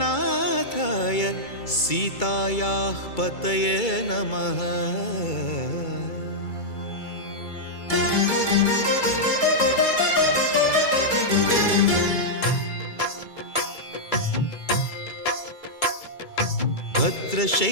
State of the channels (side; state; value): right; late; 2.3 ms